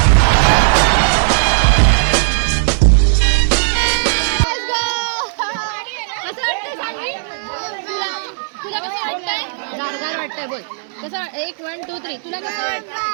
गारगार वाटतंय बोल. कसं 1 1 2 3 तुला कसं वाटतं?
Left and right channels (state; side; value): silent; left; 69 dB below the other